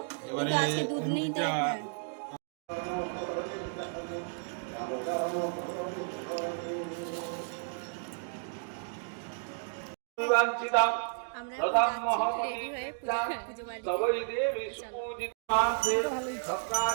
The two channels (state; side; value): silent; left; digital silence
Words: কিন্তু আজকে দুধ নেই তাই। হ্যাঁ, আমরা রেডি হয়ে পুজো